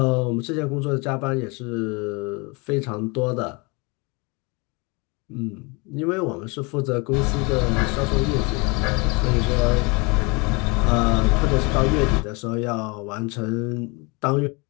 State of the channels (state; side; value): quieter; right; 28.9 dB